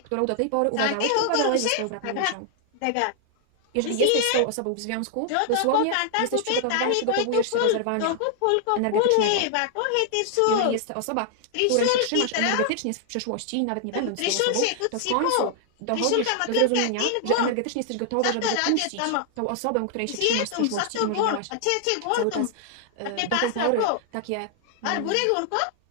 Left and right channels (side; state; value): both; different; correlation 0.00